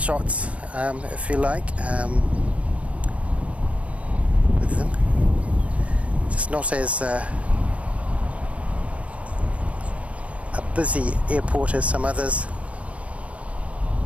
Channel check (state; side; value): late; left; 0.064 ms